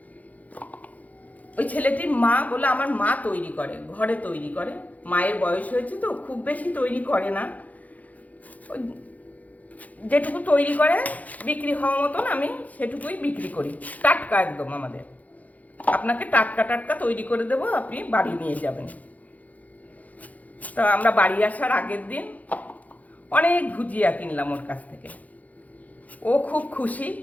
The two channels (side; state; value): right; late; 0.076 ms